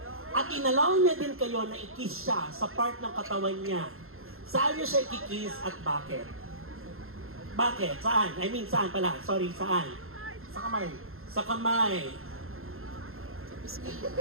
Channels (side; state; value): left; late; 0.61 ms